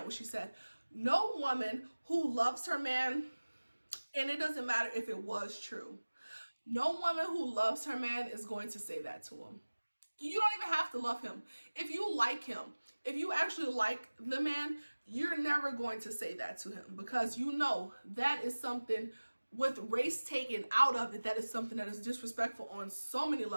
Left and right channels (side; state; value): both; inverted; correlation -1.00